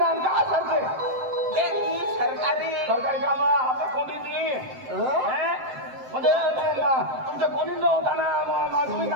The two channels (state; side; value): late; left; 7.7 ms